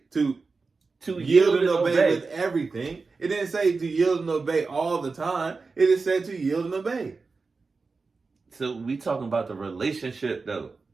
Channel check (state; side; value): quieter; left; 4.3 dB